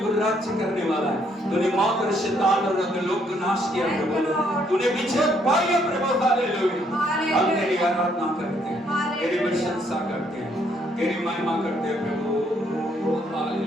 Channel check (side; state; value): both; normal; correlation 0.69